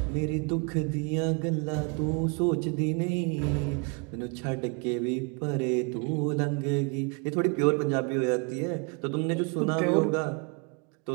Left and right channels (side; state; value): left; quieter; 33.4 dB